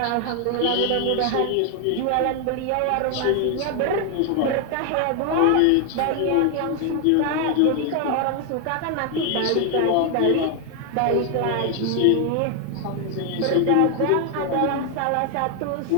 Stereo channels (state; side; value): different; both; correlation 0.01